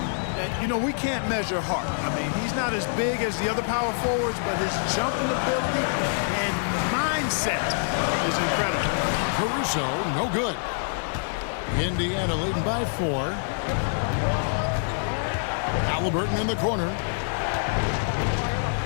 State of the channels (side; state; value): right; silent; digital silence